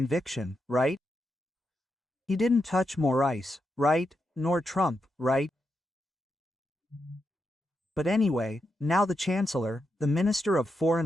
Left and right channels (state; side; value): normal; both; correlation 0.85